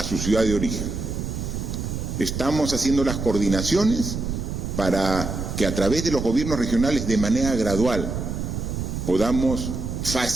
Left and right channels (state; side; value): noise; right; rumble, 4 dB below the sound